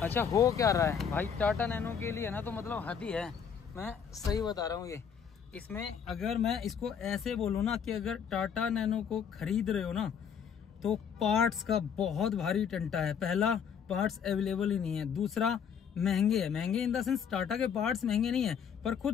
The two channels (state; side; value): quieter; right; 7.4 dB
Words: अच्छा हो क्या रहा है भाई, टाटा नैनो के लिए ना तो मतलब हद ही है, मैं सही बता रहा हूँ। ये इसमें अगर मैं इसको ऐसे बोलूँ ना कि अगर टाटा नैनो को खरीद रहे हो ना तो पार्ट्स का बहुत भारी टंटा है। पहला, पार्ट्स अवेलेबल ही नहीं है। दूसरा, महंगे है। महंगे इन द सेंस टाटा के पार्ट्स महंगे नहीं है, पर